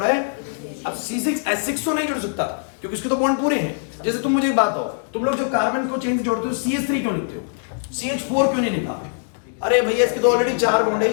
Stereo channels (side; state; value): right; silent; digital silence